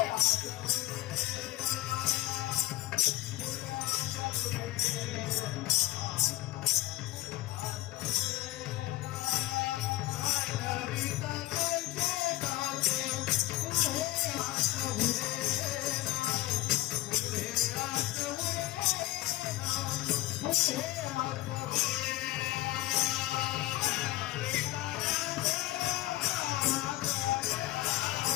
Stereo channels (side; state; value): right; quieter; 17.5 dB